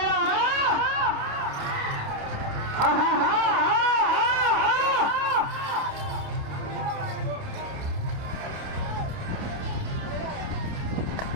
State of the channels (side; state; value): left; late; 29 ms